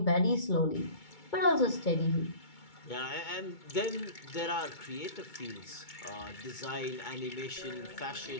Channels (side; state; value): right; late; 2.2 ms